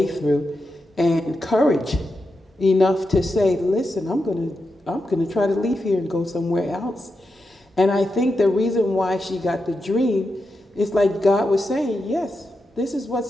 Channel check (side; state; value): both; normal; correlation 0.88